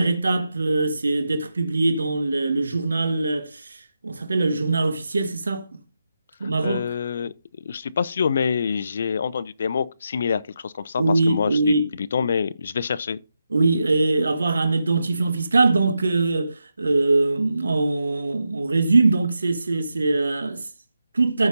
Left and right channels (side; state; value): both; inverted; correlation -0.86